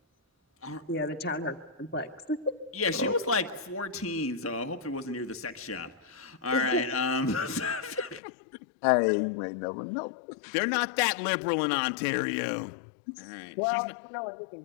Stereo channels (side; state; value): right; drops out; at 8.2 s